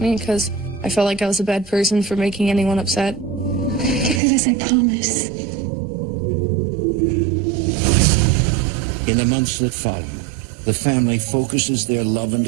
me because I felt like I was a bad person for making anyone upset. Get through this, I promise. In the months that follow, the family focuses their love and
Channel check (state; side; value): drops out; left; at 4.2 s